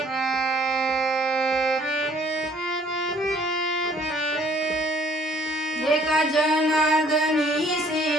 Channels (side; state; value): both; normal; correlation 0.59